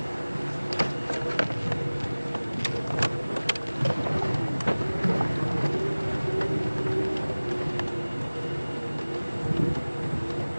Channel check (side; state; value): both; inverted; correlation -1.00